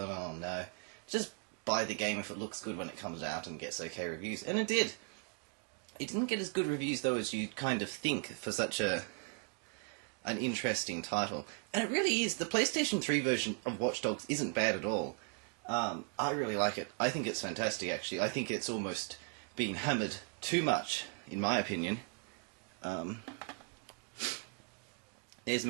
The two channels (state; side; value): quieter; left; 37.6 dB